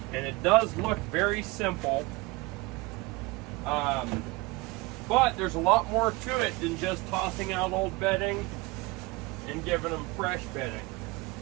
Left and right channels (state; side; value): quieter; left; 23.2 dB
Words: and it does look very simple, but there's a lot more to it than just tossing out old bedding and giving them fresh bedding.